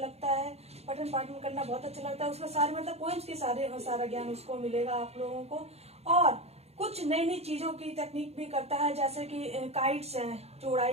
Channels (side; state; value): left; late; 0.30 ms